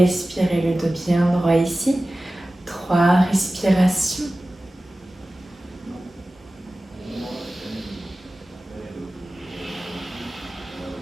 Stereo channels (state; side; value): normal; both; correlation 0.96